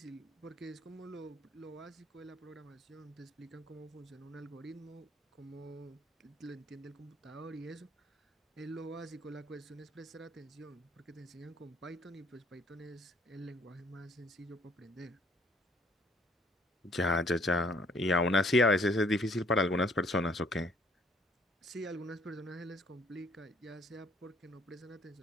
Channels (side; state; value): both; normal; correlation 0.61